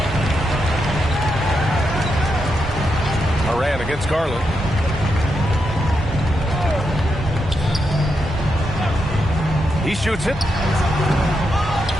Moran against Garland. He shoots it.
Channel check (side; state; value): both; normal; correlation 0.84